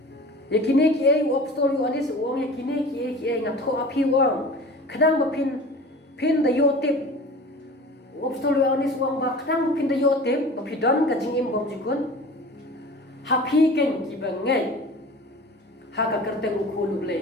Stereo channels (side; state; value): both; normal; correlation 0.39